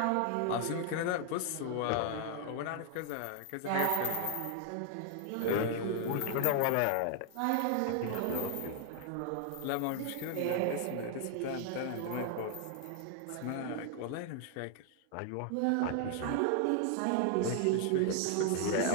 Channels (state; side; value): different; both; correlation 0.00